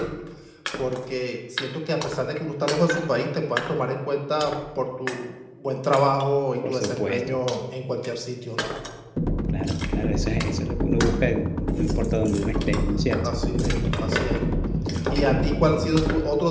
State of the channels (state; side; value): identical; both; correlation 1.00